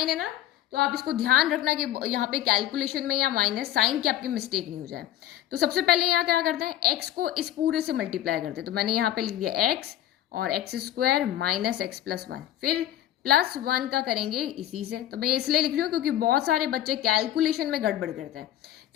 है ना, तो आप इसको ध्यान रखना कि यहाँ पे कैलकुलेशन में या माइनस साइन की आपकी मिस्टेक नहीं हो जाए। तो सबसे पहले यहाँ क्या करते हैं? x को इस पूरे से मल्टीप्लाई करते हैं। तो मैंने यहाँ पे लिख दिया x और x² माइनस x+1, फिर +1 का करेंगे इसी से। तो मैं इसलिए लिख रही हूँ क्योंकि बहुत सारे बच्चे कैलकुलेशन में गड़बड़ करते हैं।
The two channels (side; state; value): right; quieter; 12.6 dB